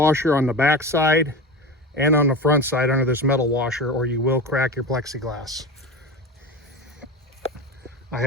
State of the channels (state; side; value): normal; both; correlation 0.27